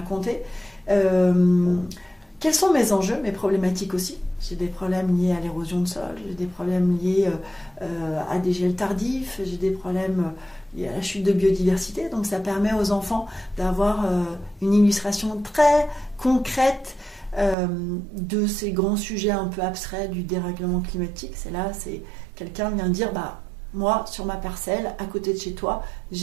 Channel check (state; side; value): drops out; left; at 17.6 s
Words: Quels sont mes enjeux, mes problématiques aussi? J'ai des problèmes liés à l'érosion de sol, j'ai des problèmes liés à des gels tardifs, j'ai des problèmes liés à la chute de biodiversité. Donc ça permet aux enfants d'avoir une illustration très concrète de ces grands sujets un peu abstraits du dérèglement climatique. C'est quelqu'un vient dire, moi, sur ma parcelle, à côté de chez toi,